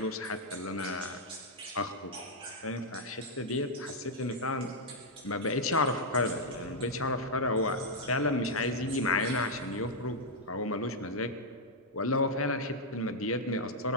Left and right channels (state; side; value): normal; both; correlation -0.03